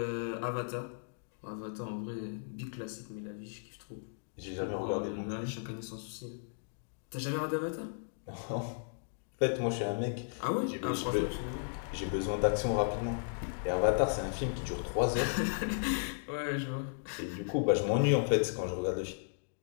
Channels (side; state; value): right; silent; digital silence